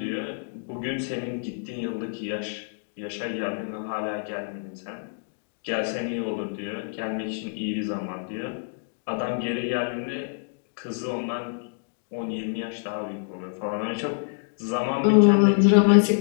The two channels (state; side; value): silent; right; digital silence